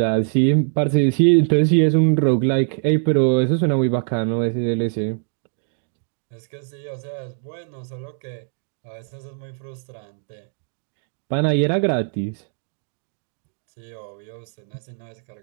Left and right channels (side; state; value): left; silent; 64 dB below the other